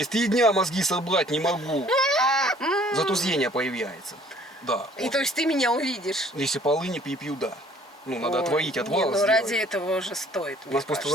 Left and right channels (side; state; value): both; normal; correlation 0.56